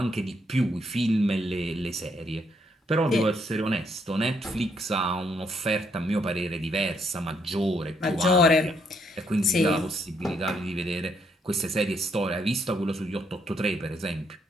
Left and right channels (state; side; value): normal; both; correlation 0.73